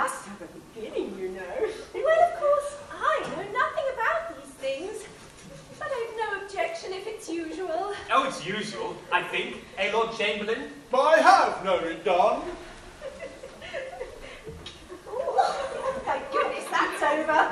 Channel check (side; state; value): both; identical; correlation 1.00